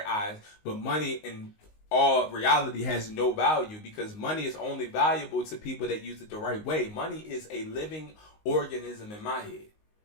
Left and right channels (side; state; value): right; late; 19 ms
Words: eyes, but money in all reality has no value, because money is only valuable to people that use it the right way. Money is a living organism in my head.